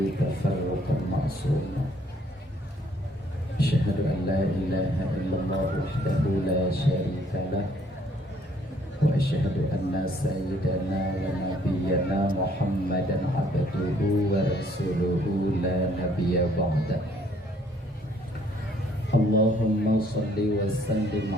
tafarruqan ma'suma. Asyhadu an la ilaha illallah wahdahu la syarika lah wa asyhadu anna sayyidana wa nabiyyana Muhammadan abduhu wa rasuluhu la nabiyya ba'da. Allahumma salli wa sallim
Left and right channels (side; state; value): both; normal; correlation 0.64